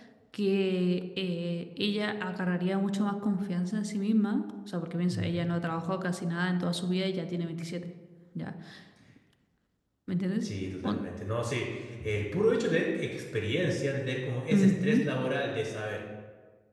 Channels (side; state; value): both; identical; correlation 1.00